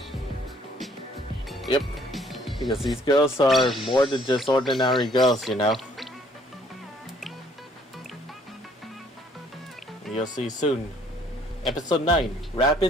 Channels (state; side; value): normal; both; correlation 0.62